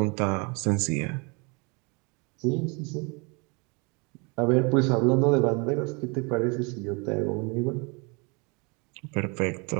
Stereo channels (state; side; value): quieter; left; 31.1 dB